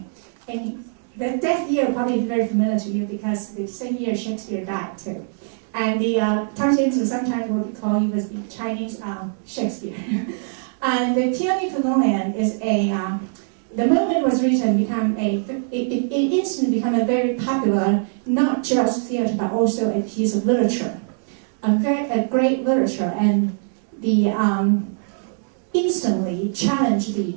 And the death year probably is very familiar to you because the same year Shakespeare died too. And Tang Xianzu sometimes will be called, he was the Chinese Shakespeare. And the Peony Pavilion is the moment it was written, it instantly became a very popular, not just theater, but also a piece of literature. A great literature, and instantly challenged the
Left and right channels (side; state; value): left; silent; digital silence